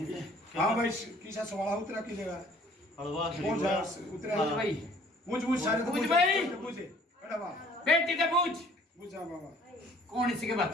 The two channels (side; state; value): both; normal; correlation 0.56